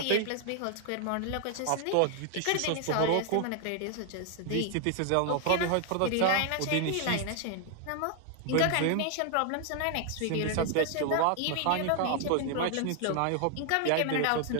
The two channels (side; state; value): both; different; correlation 0.00